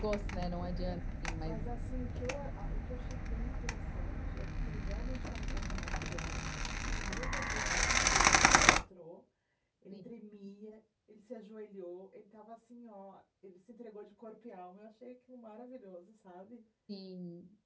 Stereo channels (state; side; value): identical; both; correlation 1.00